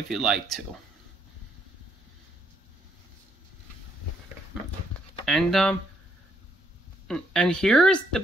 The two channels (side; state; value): both; normal; correlation 0.72